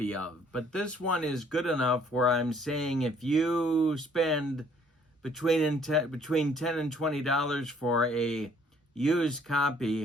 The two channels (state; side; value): normal; both; correlation 0.61